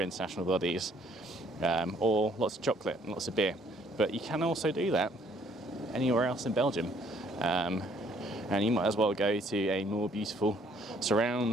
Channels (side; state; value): both; normal; correlation 0.63